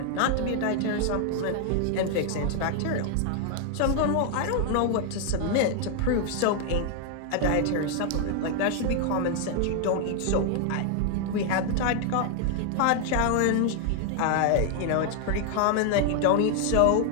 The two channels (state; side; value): different; both; correlation 0.00